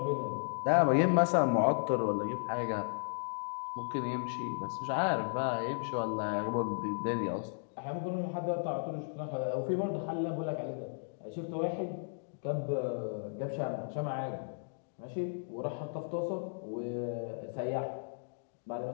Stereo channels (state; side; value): silent; right; digital silence